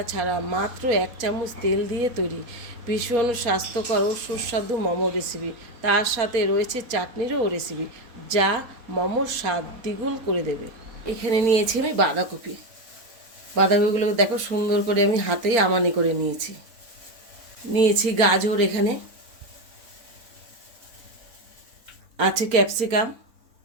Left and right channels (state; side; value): late; left; 4.3 ms